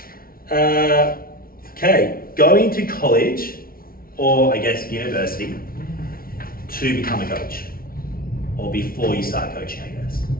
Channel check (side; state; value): right; late; 0.43 ms